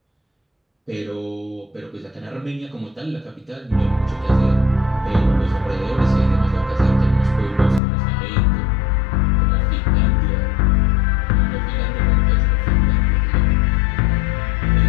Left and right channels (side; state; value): right; drops out; at 7.8 s